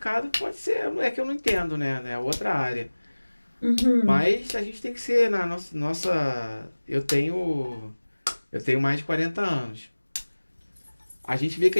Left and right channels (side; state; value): both; inverted; correlation -1.00